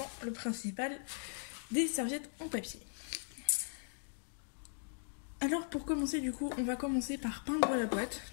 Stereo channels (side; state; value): right; silent; digital silence